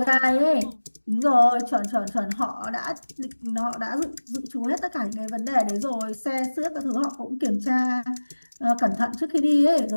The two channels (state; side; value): inverted; both; correlation -1.00